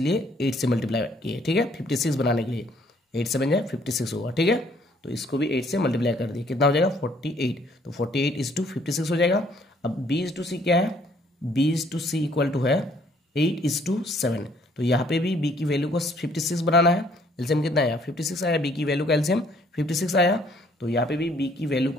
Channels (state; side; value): normal; both; correlation 0.63